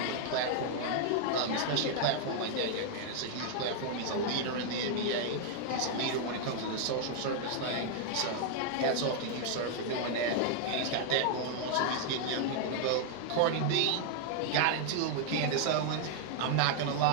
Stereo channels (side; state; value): both; different; correlation 0.00